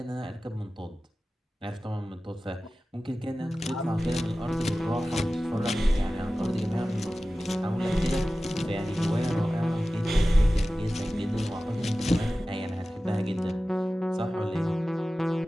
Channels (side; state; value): both; normal; correlation 0.96